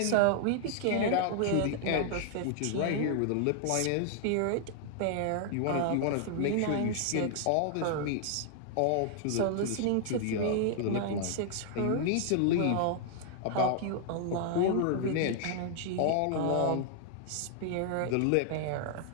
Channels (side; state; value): both; different; correlation 0.00